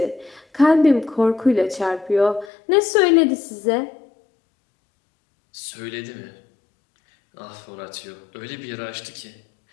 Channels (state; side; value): drops out; right; at 2.5 s